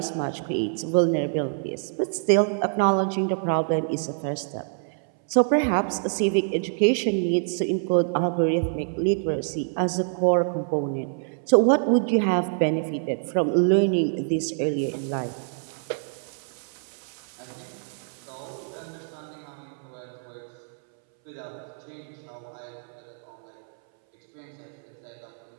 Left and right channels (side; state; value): left; silent; 61 dB below the other